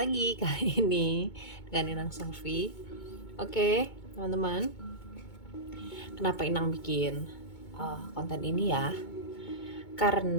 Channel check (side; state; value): right; late; 2.2 ms